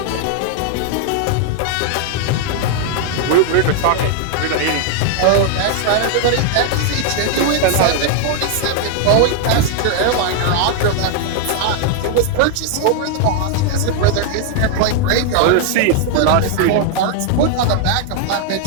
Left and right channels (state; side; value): different; both; correlation 0.00